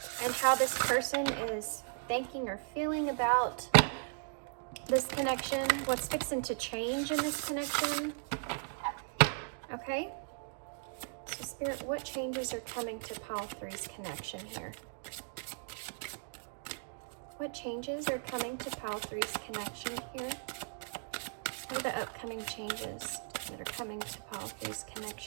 and how this person is thinking or feeling about this connection, what's fixing to change in this connection. Okay? So Spirit, what changes are coming to Pile 3's connection here? What changes are coming to Pile 3's connection here? What are the upcoming changes that are coming to Pile 3's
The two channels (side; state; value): left; silent; digital silence